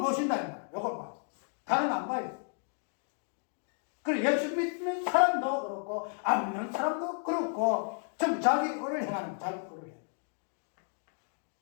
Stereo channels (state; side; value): silent; right; 56 dB below the other